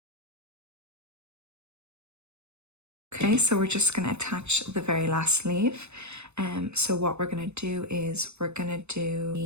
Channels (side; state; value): left; late; 0.81 ms